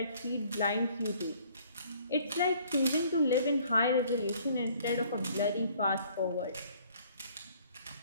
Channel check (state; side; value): inverted; both; correlation -0.58